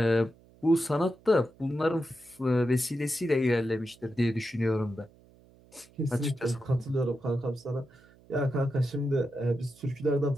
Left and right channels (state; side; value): noise; right; hum, 27 dB below the sound